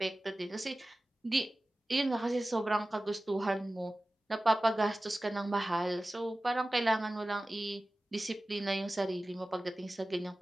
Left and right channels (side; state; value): both; normal; correlation 0.96